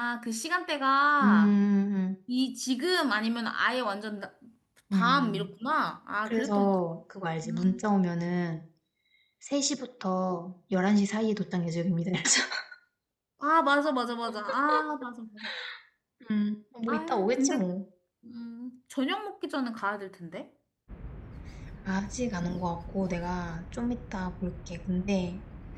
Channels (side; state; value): both; identical; correlation 1.00